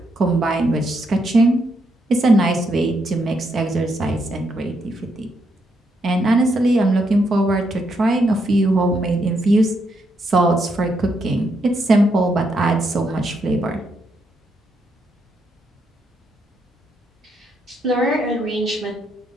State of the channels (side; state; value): both; normal; correlation 0.78